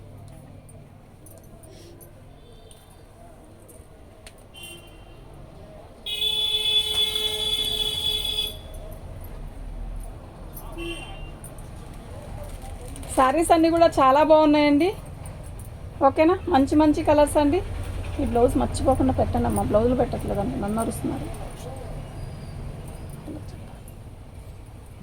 శారీస్ అన్నీ కూడా చాలా బాగున్నాయండి. ఓకేనా, మంచి మంచి కలర్స్ అండి. ఈ బ్లౌజ్ మర్చిపోకుండా పెట్టండి అమ్మా, బ్లౌజులు పెట్టట్లేదండి, నన్ను అరుస్తున్నారు.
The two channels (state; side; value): identical; both; correlation 1.00